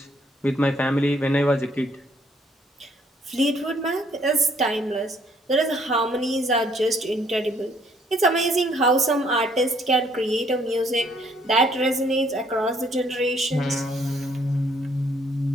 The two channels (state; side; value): normal; both; correlation 0.65